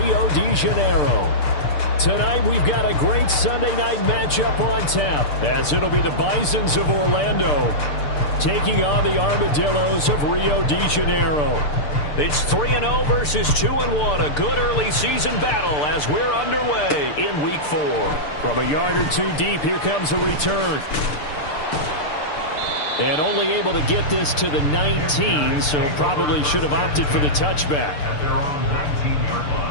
de Janeiro. Tonight we've got a great Sunday night matchup on tap, as it'll be the Bisons of Orlando taking on the Armadillos of Rio de Janeiro. It's 3-0 versus 2-1, a good early season battle as we're underway in Week 4. From a yard or two deep, here comes a return. And only able to get this to the 19, so probably should have opted for the touchback. At their own 19-yard line.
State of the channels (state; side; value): late; right; 6.8 ms